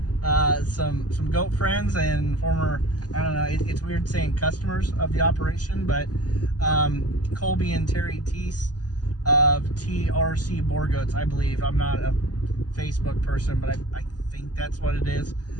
some goat friends and former, I don't know, it's weird saying customers of the operation, but Colby and Terry Teese of TRC Boer Goats, I believe. I'm not a Facebook person, but I think that's what it is.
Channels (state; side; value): late; right; 0.69 ms